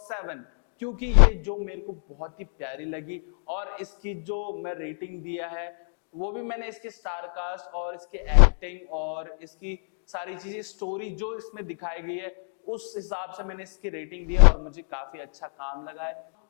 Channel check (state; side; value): silent; right; digital silence